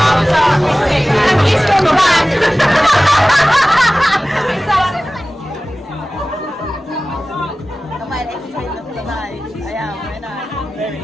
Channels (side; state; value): both; normal; correlation 0.97